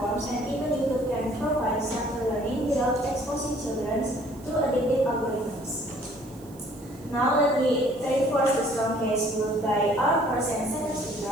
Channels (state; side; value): noise; right; hiss, 25 dB below the sound